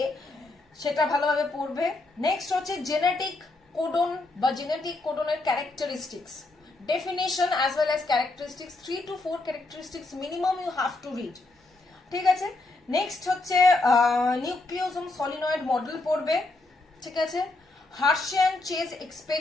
সেটা ভালোভাবে পড়বে। নেক্সট হচ্ছে জেনেটিক কোডন বা জেনেটিক কোডনের characteristics, definition as well as characteristics, 3 to 4 characteristics minimum you have to read. ঠিক আছে, নেক্সট হচ্ছে নিউক্লিওজোম সলিনয়েড মডেল পড়বে। ঠিক আছে, হার্শিয়ান চেজ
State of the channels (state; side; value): quieter; right; 3.1 dB